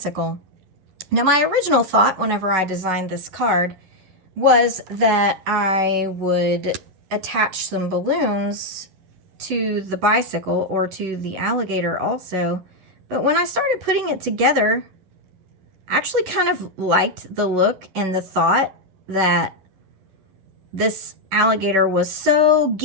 Now, my original thought whenever I designed this card was that I would attach some balloons to the bicycle or to the alligator also. But when I started putting it together, I actually kind of liked the look and the thought that this alligator was so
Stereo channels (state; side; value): late; left; 11 ms